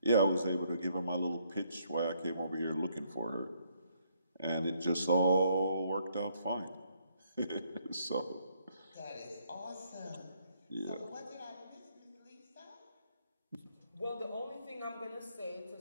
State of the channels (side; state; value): both; inverted; correlation -0.71